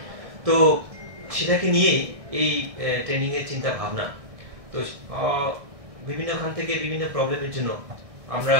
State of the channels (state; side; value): late; left; 1.6 ms